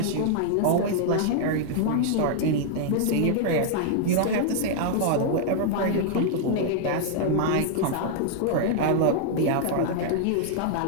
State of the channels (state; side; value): different; both; correlation -0.01